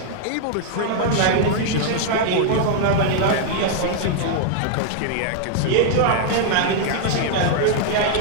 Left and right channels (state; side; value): different; both; correlation 0.00